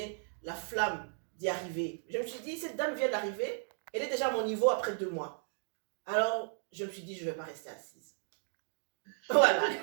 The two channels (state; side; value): silent; left; digital silence